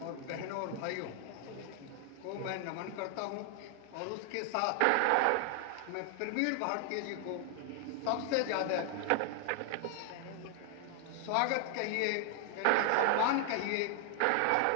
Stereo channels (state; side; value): different; both; correlation 0.00